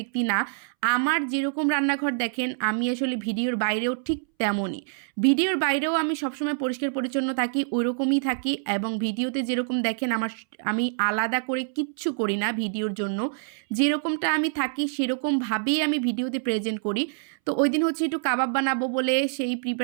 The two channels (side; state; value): left; silent; 61 dB below the other